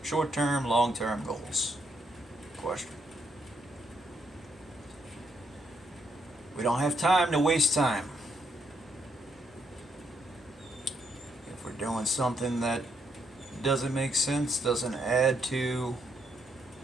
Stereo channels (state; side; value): normal; both; correlation 0.75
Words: short-term, long-term goals? Question. We don't have time to waste time. If we're doing something that doesn't make sense, doesn't add to